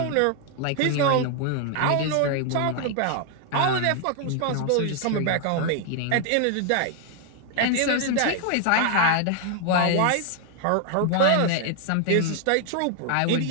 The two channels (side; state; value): both; different; correlation 0.00